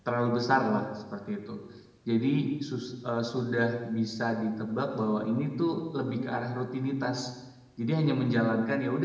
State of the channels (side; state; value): both; identical; correlation 1.00